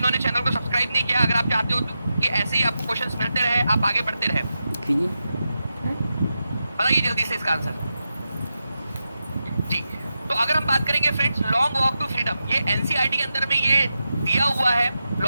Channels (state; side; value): inverted; both; correlation -0.89